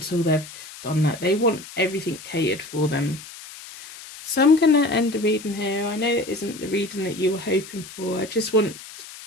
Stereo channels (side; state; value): left; noise; hiss, 15 dB below the sound